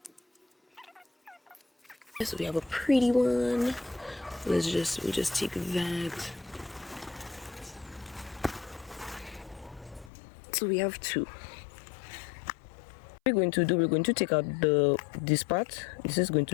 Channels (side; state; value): right; drops out; at 10.1 s